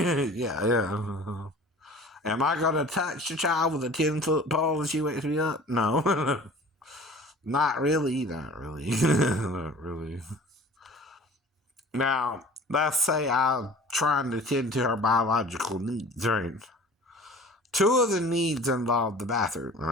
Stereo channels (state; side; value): normal; both; correlation 0.44